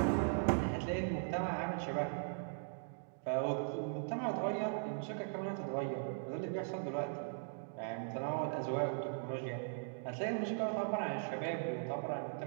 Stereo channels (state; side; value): silent; left; digital silence